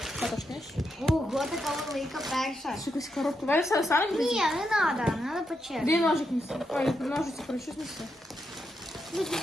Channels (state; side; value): normal; both; correlation 0.83